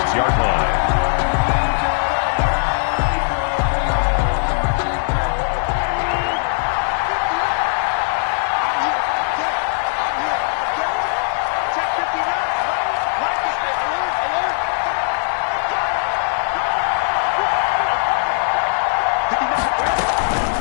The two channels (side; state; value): right; silent; 66 dB below the other